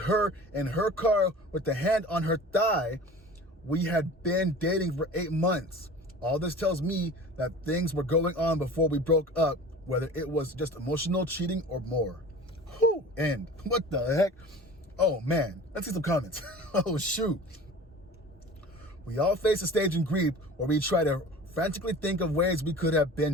in her car with the hand on her thigh. We had been dating for 8 months. All this tells me that things were going on before we broke up, whether it was just emotional cheating or more. Whew, and what the heck? Oh man, let's see some comments. Oh shoot. We all face a stage in grief where we try to frantically think of ways we could have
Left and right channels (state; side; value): normal; both; correlation 0.40